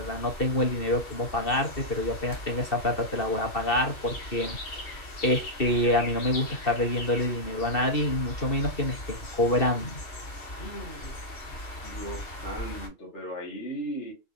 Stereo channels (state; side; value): late; right; 2.7 ms